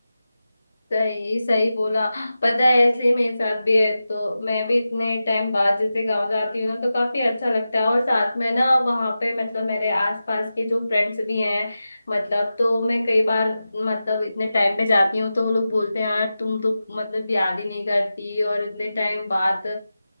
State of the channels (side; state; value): both; inverted; correlation -0.93